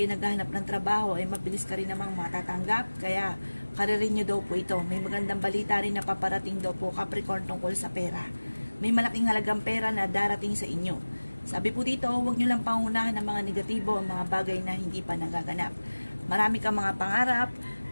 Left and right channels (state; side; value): inverted; both; correlation -1.00